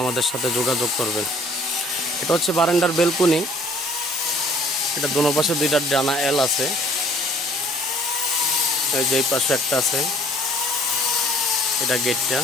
আমাদের সাথে যোগাযোগ করবেন। এটা হচ্ছে বারান্দার বেলকুনি। এটা দোনো পাশে দুইটা ডানা এল আছে। এই যে এই পাশে একটা আছে, এটা গেটটা।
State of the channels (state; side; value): normal; both; correlation 0.56